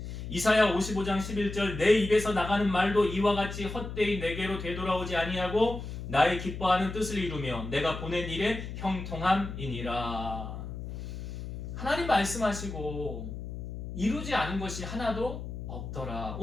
이사야 55장 11절 내 입에서 나가는 말도 이와 같이 헛되이 내게로 되돌아오지 아니하고 나의 기뻐하는 뜻을 이루며 내가 보낸 일에 형통함이니라. 하나님 말씀하시고 이루지 않은 것이 하나도 없더라.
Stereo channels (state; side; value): noise; left; hum, 8 dB below the sound